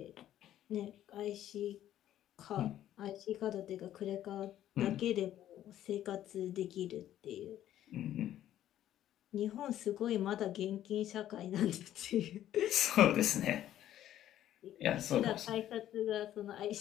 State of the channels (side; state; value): right; quieter; 12.1 dB